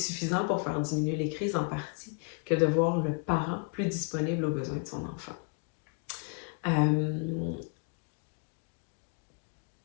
pour faire diminuer les crises en partie que de voir le parent plus disponible aux besoins de son enfant.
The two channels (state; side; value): quieter; right; 37.5 dB